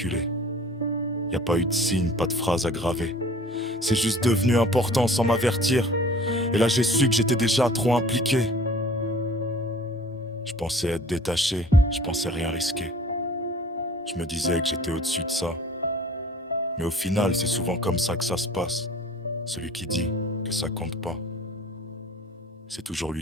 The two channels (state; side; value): normal; both; correlation 0.48